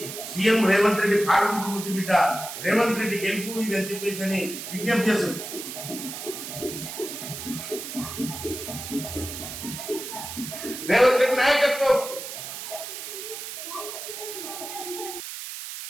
సీఎం రేవంత్ రెడ్డి పాలనకు ముద్దు బిడ్డ రేవంత్ రెడ్డి గెలుపు ఇది అని చెప్పేసి అని విజ్ఞప్తి చేస్తుంది. రేవంత్ రెడ్డి నాయకత్వం,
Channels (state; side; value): noise; right; hiss, 8 dB below the sound